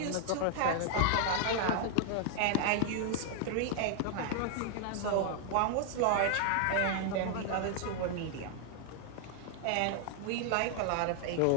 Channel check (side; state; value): both; different; correlation 0.00